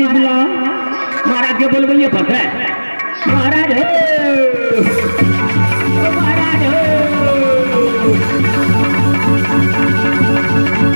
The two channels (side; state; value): both; inverted; correlation -1.00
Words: बुलाओ। महाराज के बोल बोलिए पता है महाराज महाराज